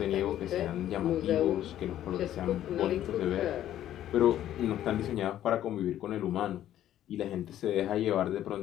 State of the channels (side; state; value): right; quieter; 12.0 dB